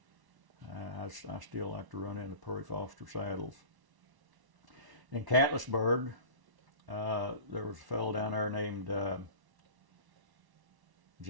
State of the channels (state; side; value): late; left; 1.1 ms